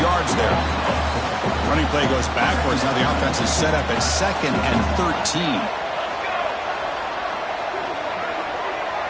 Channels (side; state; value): both; identical; correlation 1.00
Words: yards there. Running play goes backwards. Now the offense is set up at 2nd and 13.